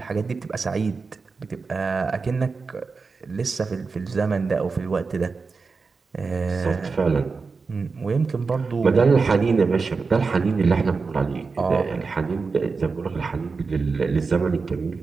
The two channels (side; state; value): left; quieter; 4.6 dB